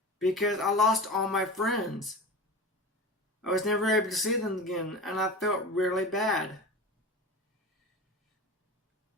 because I lost all my friends. I was never able to see them again, and I felt really bad.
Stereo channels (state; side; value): normal; both; correlation 0.30